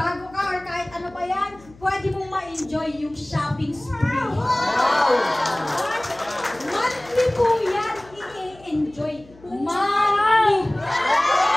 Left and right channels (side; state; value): left; noise; hum, 24 dB below the sound